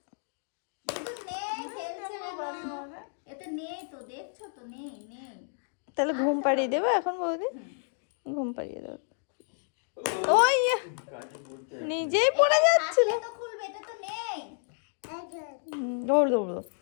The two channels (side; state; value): right; silent; 58 dB below the other